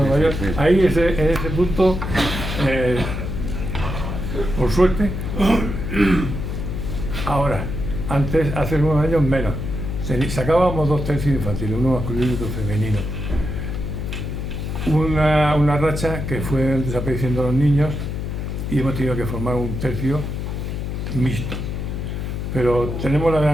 mayor, ahí en ese punto, por suerte, ahora, antes, hace unos años menos, sacábamos 2 tercios infantiles, uno masculino y otro femenino. Una racha que fue desapareciendo los niños y hemos tenido que formar un tercio mixto. Pero tenemos la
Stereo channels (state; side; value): noise; left; hum, 4 dB below the sound